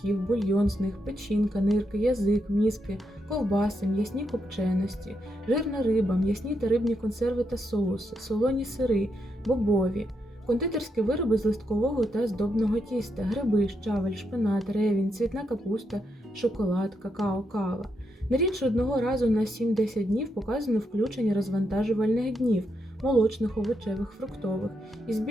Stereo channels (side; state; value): both; normal; correlation 0.81